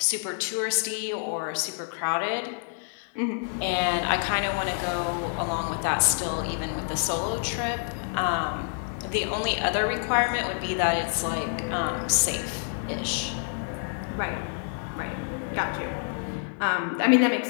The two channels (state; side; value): silent; right; digital silence